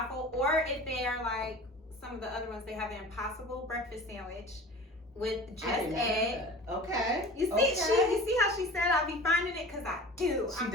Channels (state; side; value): normal; both; correlation 0.39